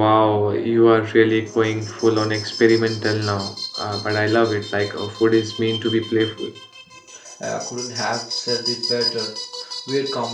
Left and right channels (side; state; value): both; identical; correlation 1.00